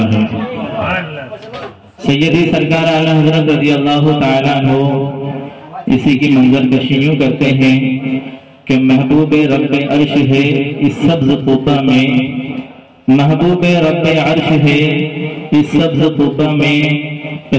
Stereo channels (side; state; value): both; identical; correlation 1.00